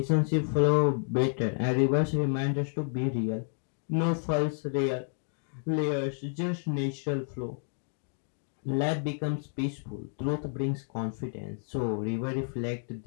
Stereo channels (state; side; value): silent; right; 58 dB below the other